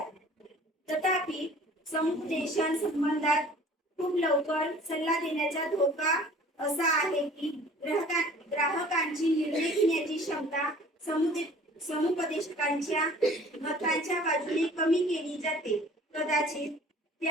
तथापि समुपदेशन संबंधात खूप लवकर सल्ला देण्याचा धोका असा आहे की ग्राहकांची निर्णय घेण्याची क्षमता समुपदेशकांच्या मतांच्या बाजूने कमी केली जाते. कदाचित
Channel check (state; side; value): normal; both; correlation 0.49